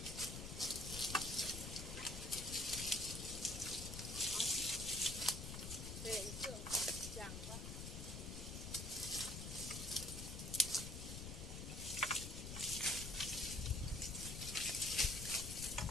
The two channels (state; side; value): noise; left; rumble, 6 dB below the sound